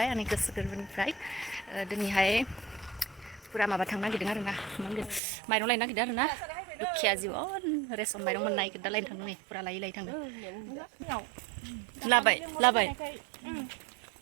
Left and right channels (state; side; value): drops out; left; at 5.2 s